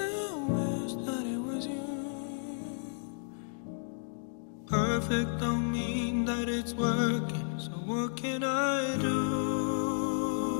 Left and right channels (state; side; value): silent; right; digital silence